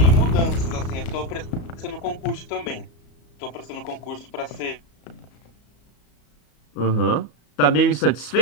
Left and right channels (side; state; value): right; late; 34 ms